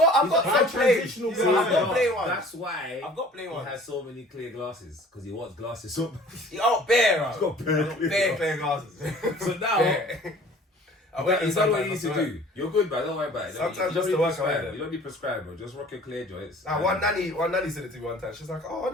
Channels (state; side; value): normal; both; correlation 0.49